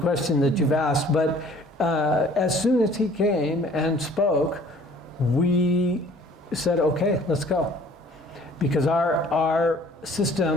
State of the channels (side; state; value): both; normal; correlation 0.54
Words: that you've asked, but as soon as he came and spoke, we said, okay, let's go. Because our